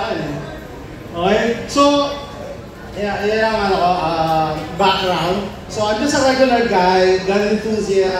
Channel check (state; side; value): identical; both; correlation 1.00